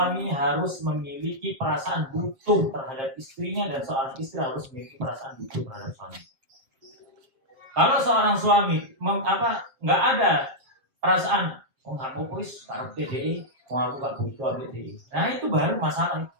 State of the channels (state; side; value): late; left; 7.5 ms